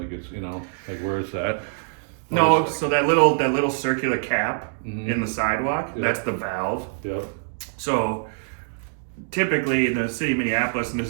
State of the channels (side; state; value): left; silent; digital silence